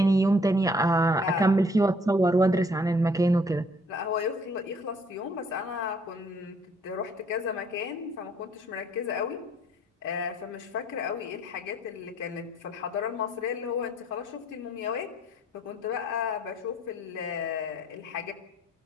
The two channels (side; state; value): both; normal; correlation 0.61